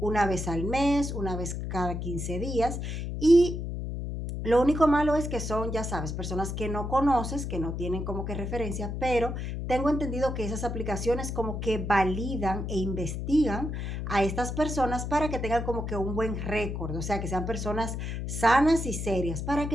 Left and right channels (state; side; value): noise; left; hum, 4 dB below the sound